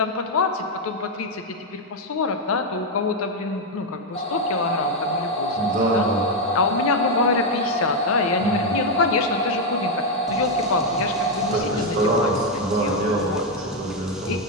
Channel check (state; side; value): normal; both; correlation 0.02